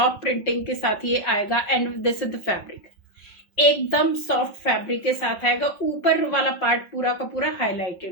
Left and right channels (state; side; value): late; right; 5.7 ms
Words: प्रिंटिंग के साथ ये आएगा। And this is the fabric, एकदम सॉफ्ट फैब्रिक के साथ आएगा। ऊपर वाला पार्ट पूरा का पूरा